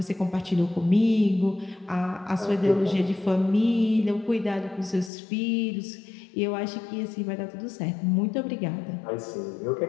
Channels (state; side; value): drops out; right; at 5.1 s